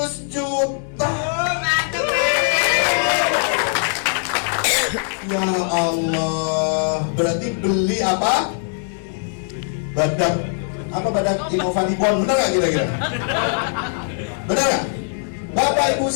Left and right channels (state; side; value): silent; right; digital silence